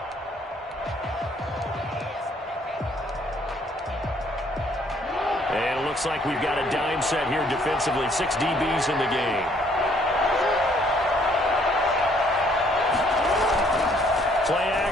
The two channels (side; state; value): both; normal; correlation 0.64